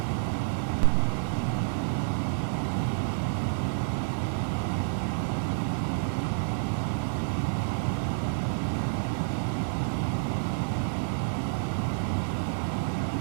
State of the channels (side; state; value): left; silent; digital silence